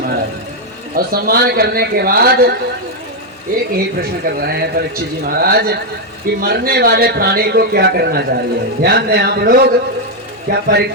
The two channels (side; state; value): both; normal; correlation 0.01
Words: और सम्मान करने के बाद एक ही प्रश्न कर रहे हैं परीक्षित जी महाराज कि मरने वाले प्राणी को क्या करना चाहिए। ध्यान दें आप लोग, क्या